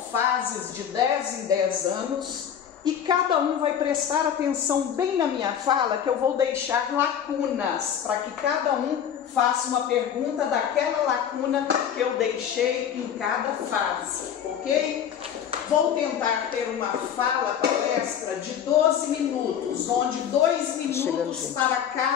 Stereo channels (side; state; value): right; quieter; 8.8 dB